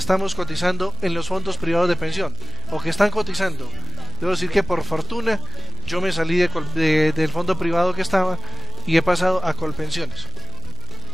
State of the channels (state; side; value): noise; right; hum, 16 dB below the sound